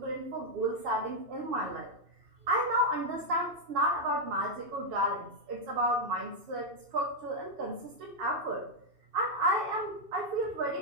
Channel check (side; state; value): left; late; 2.6 ms